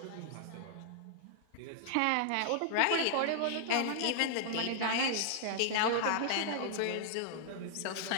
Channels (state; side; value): different; both; correlation -0.01